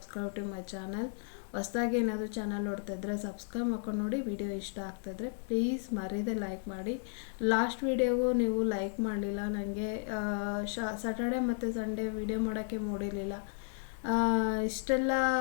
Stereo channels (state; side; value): silent; right; 55 dB below the other